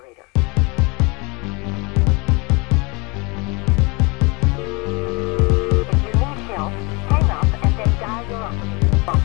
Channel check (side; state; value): right; quieter; 28.1 dB